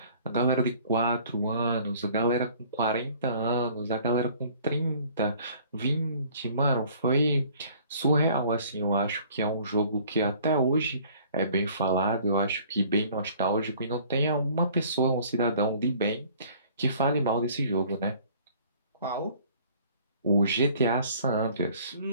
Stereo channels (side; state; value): both; inverted; correlation -0.54